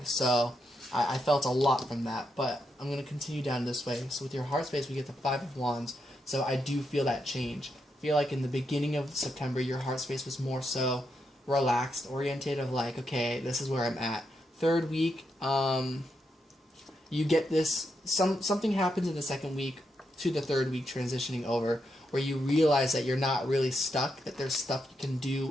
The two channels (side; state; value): both; normal; correlation 0.83